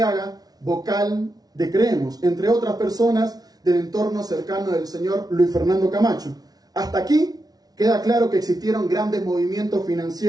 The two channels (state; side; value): late; left; 0.19 ms